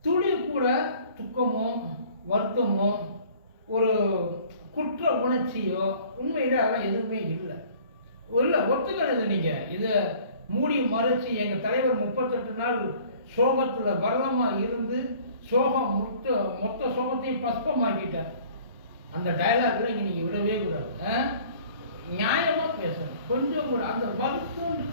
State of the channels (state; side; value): inverted; both; correlation -0.52